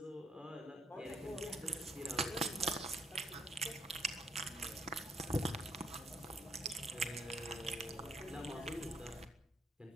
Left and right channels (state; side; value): normal; both; correlation 0.71